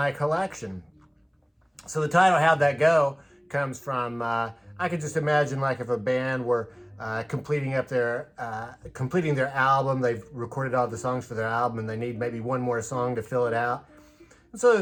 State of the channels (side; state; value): both; identical; correlation 1.00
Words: collection. So the title How'd That Go comes from, I could just imagine like if a band were completing their album, they've recorded all the songs for their album and they need maybe one more song to fill it out. And so